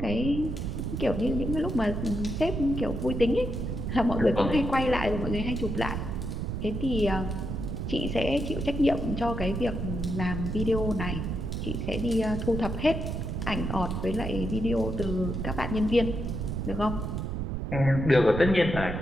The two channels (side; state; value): right; noise; rumble, 3 dB below the sound